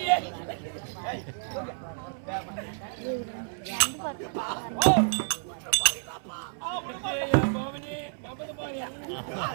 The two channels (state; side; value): silent; left; 57 dB below the other